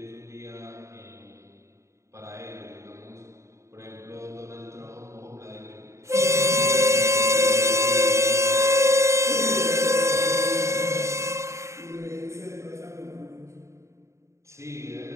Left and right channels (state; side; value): late; left; 0.14 ms